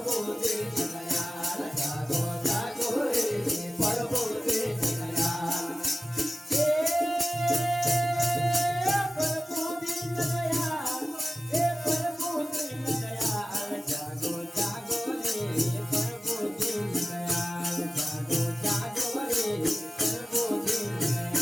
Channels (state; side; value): normal; both; correlation 0.96